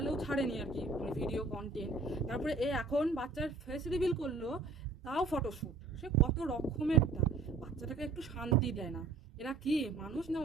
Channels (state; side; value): quieter; left; 3.8 dB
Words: ছাড়েনি আর কি মানে ভিডিও কন্টেন্ট, তারপরে এ এখন বাচ্চার ফেস রিভিল করলো তাও ফটোশ্যুট। সে কত রকমেরটা, বাচ্চাটাকে একটু শান্তি দেয় না। এরা কি মানুষ না